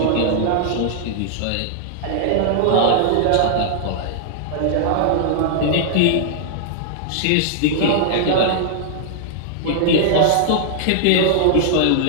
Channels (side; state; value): both; different; correlation -0.01